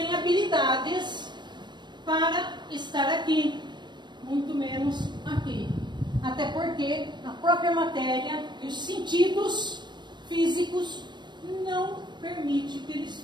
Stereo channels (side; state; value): left; late; 0.22 ms